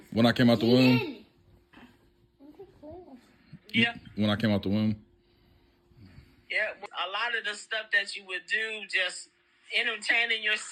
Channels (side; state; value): both; identical; correlation 1.00